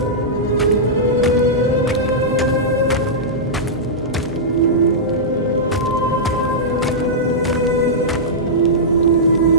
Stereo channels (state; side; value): normal; both; correlation -0.12